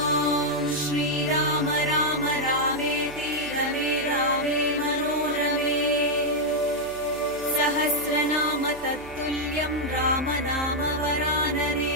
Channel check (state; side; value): noise; right; hum, 19 dB below the sound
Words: श्रीराम राम रामेति रमे रामे मनोरमे। सहस्रनाम तत्तुल्यं रामनाम